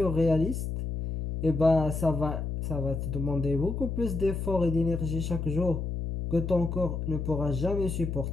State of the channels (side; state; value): left; noise; hum, 3 dB below the sound